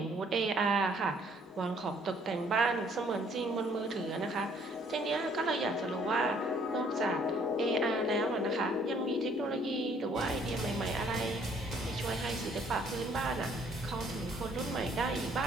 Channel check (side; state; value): both; normal; correlation 0.62